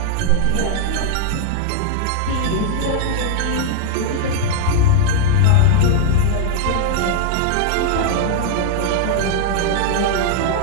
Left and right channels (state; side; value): different; both; correlation 0.00